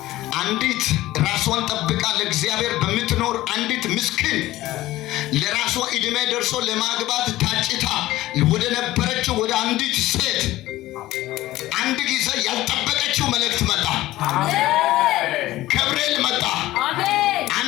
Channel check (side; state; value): right; quieter; 16.3 dB